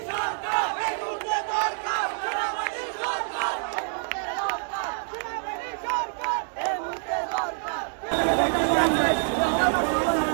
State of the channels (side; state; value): left; silent; digital silence